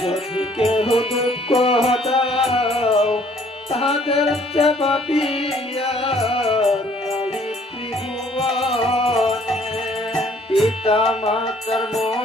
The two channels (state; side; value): normal; both; correlation 0.60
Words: যদি কেউ দুঃখ দাও তাদের চেয়ে পাপিয়া পিতা মাতার